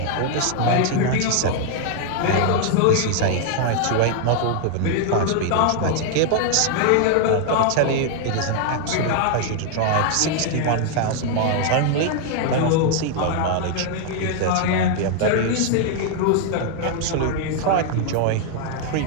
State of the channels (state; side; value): different; both; correlation 0.00